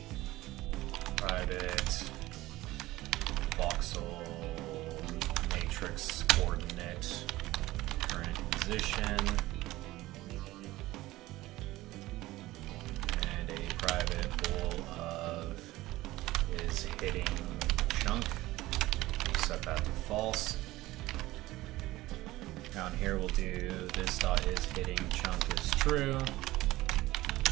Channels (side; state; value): left; quieter; 17.7 dB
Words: Private voxel matrix coordinate current position, and a private bool of is hitting chunk. Set that to false. Down here we'll do this dot is hitting chunk is true.